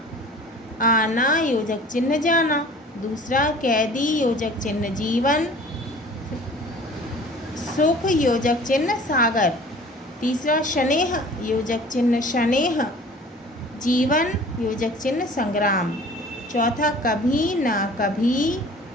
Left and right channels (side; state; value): both; normal; correlation 0.46